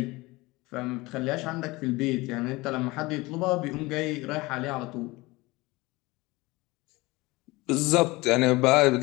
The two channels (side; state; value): right; quieter; 21.9 dB